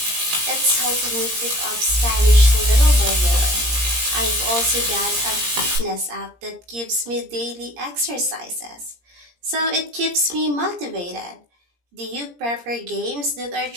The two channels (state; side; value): late; left; 17 ms